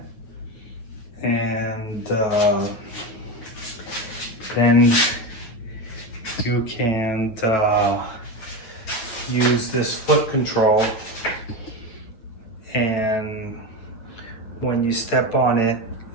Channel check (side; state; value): right; late; 9.3 ms